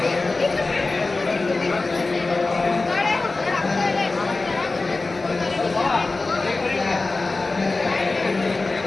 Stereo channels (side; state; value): right; quieter; 3.5 dB